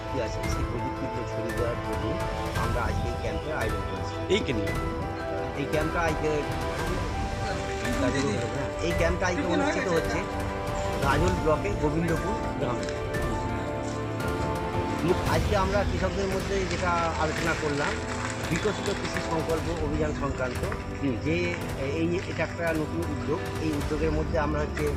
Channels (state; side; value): identical; both; correlation 1.00